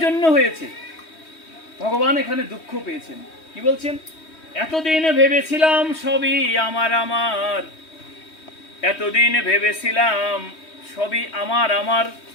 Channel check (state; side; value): late; right; 3.2 ms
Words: জন্য হয়েছে, ভগবান এখানে দুঃখ পেয়েছেন। কি বলছেন? এতদিন ভেবেছিলাম সবই আমার আমার, এতদিন ভেবেছিলাম সবই আমার আমার,